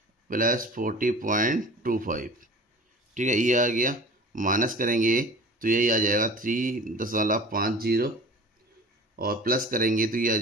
प्लस 40.25। ठीक है, ये आ गया। माइनस करेंगे तो यही आ जाएगा 3.50 और प्लस करेंगे तो ये आ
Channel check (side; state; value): both; normal; correlation 0.41